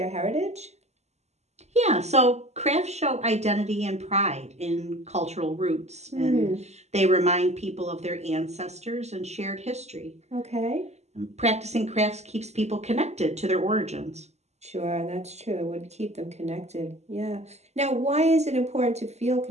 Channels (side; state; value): left; late; 0.32 ms